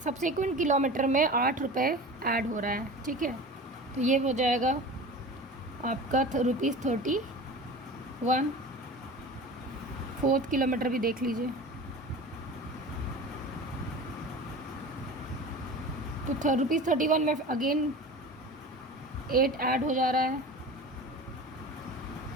सब्सिक्वेंट किलोमीटर में ₹8 ऐड हो रहा है, ठीक है। तो ये हो जाएगा आपका ₹31। फोर्थ किलोमीटर भी देख लीजिए, तो ₹31 में अगेन 8 ऐड हो जा रहा है,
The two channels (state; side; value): normal; both; correlation 0.35